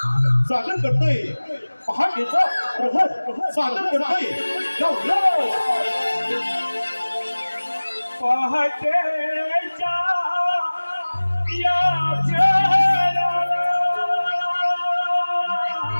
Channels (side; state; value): both; inverted; correlation -1.00